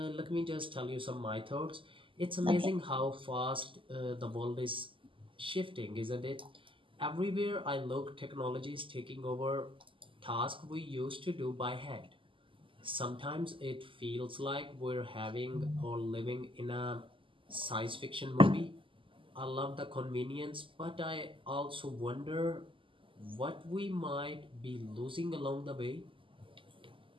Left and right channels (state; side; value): late; left; 0.25 ms